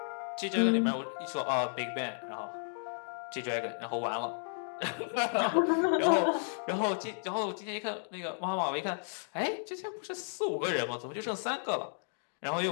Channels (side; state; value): right; silent; digital silence